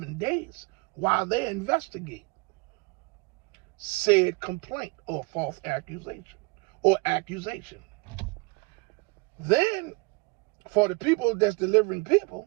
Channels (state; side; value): quieter; left; 28.8 dB